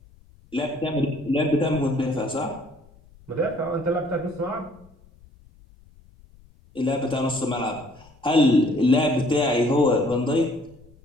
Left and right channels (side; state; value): left; noise; rumble, 27 dB below the sound